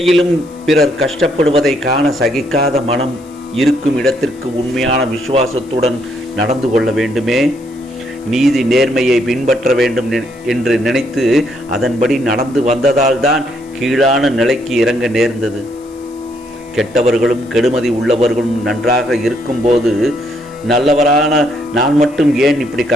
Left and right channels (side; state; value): left; noise; hiss, 27 dB below the sound